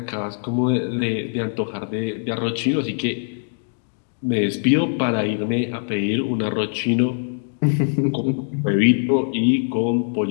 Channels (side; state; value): right; silent; digital silence